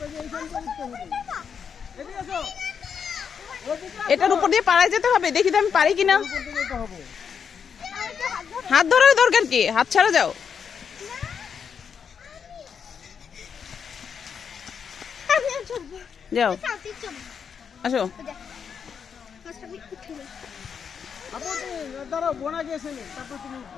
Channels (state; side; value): quieter; right; 6.9 dB